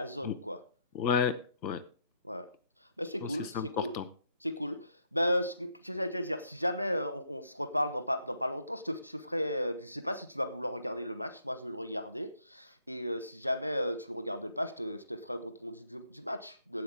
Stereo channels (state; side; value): inverted; both; correlation -0.71